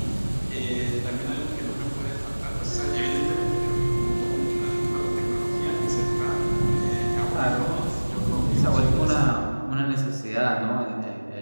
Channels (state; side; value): inverted; both; correlation -1.00